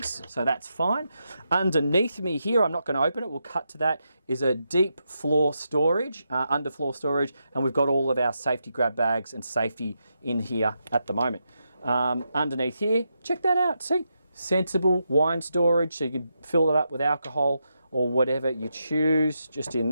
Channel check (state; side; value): inverted; both; correlation -0.85